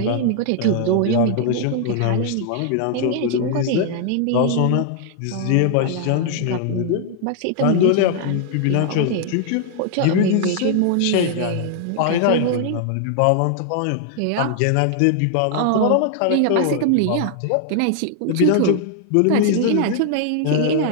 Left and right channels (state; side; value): different; both; correlation 0.00